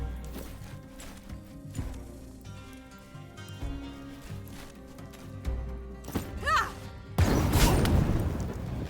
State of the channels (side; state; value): both; identical; correlation 1.00